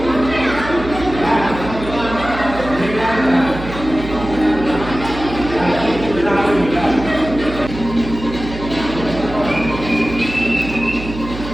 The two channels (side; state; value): right; noise; hum, 10 dB below the sound